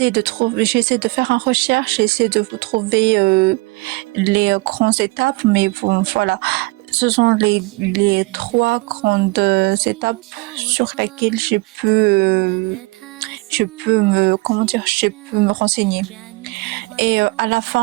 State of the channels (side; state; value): left; quieter; 24.3 dB